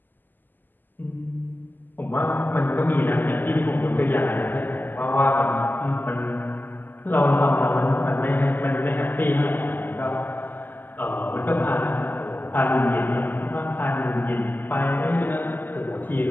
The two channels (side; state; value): right; late; 0.089 ms